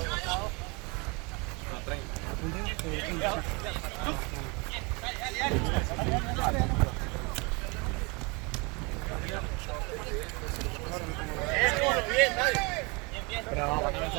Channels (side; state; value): left; quieter; 29.1 dB